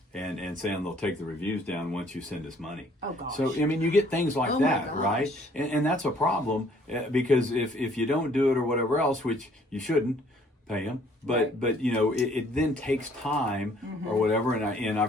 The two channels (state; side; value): normal; both; correlation 0.60